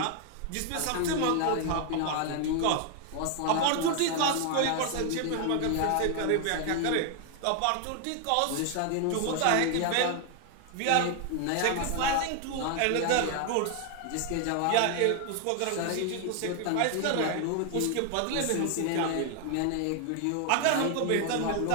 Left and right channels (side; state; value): both; different; correlation 0.00